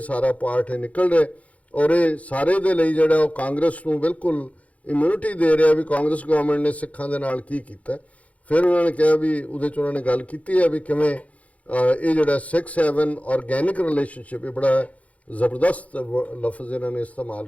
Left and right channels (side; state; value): right; late; 0.067 ms